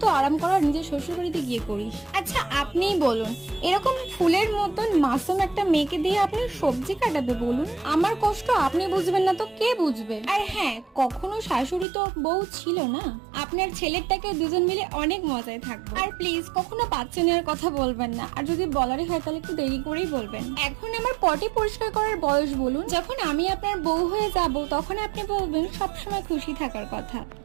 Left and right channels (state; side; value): drops out; left; at 11.9 s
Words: আরাম করার নিজের শ্বশুর বাড়িতে গিয়ে করিস। আচ্ছা আপনিই বলুন, এরকম ফুলের মতন মাসুম একটা মেয়েকে দিয়ে আপনি সবজি কাটাবে বলুন? আমার কষ্ট আপনি বুঝবেন না তো কে বুঝবে? আর হ্যাঁ, কখনো শাশুড়ি তো বউ ছিল না। আপনার ছেলেরটাকে দুজন মিলে অনেক মজায় থাকবো। আর প্লিজ কখনো বাচ্চা নেওয়ার কথা বলবেন না, আর যদি বলারই হয় তাহলে একটু দেরি করেই বলবেন। এখন আমার পটি পরিষ্কার করার বয়স বলুন? যখন আমি আপনার বউ হয়ে যাব তখন আপনি বলবেন সবসময় খুশি থাকার কথা।